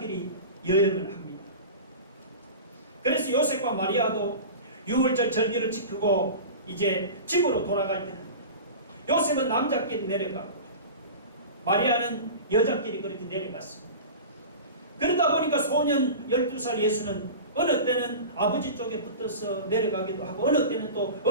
여행을 합니다. 그래서 요셉과 마리아도 6월절 절기를 지키고 이제 집으로 돌아갈 때는 요셉은 남자끼리 내려가고 마리아는 여자끼리 그렇게 내려갔습니다. 그러다 보니까 소년 12살 예수는 어느 때는 아버지 쪽에 붙어서 내려가기도 하고 어느 때는 또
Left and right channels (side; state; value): both; inverted; correlation -0.32